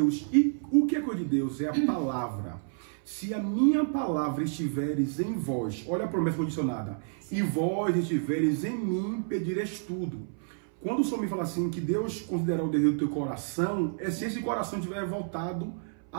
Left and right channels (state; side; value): silent; left; 58 dB below the other